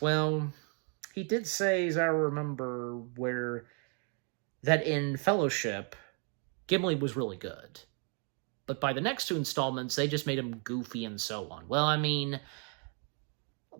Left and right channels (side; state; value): left; quieter; 39.8 dB